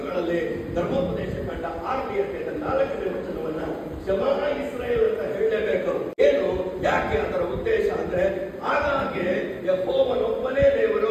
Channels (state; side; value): identical; both; correlation 1.00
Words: ಧರ್ಮೋಪದೇಶ ಕಂಡ 6ನೇ ಅಧ್ಯಾಯದ 4ನೇ ವಚನವನ್ನ ಶಮಾ ಇಸ್ರೇಲ್ ಅಂತ ಹೇಳಲೇಬೇಕು. ಏನು, ಯಾಕೆ? ಅದರ ಉದ್ದೇಶ ಅಂದ್ರೆ ಆಗಾಗ್ಗೆ ಯೆಹೋವನೊಬ್ಬನೇ